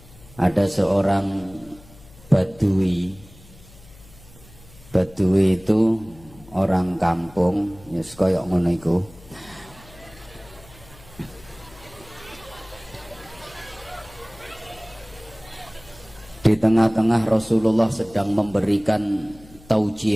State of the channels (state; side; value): noise; left; hum, 22 dB below the sound